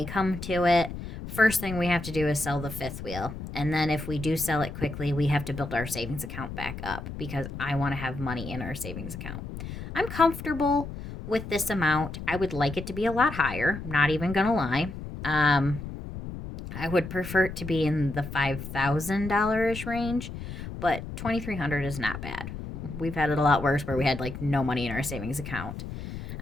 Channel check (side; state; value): left; noise; rumble, 9 dB below the sound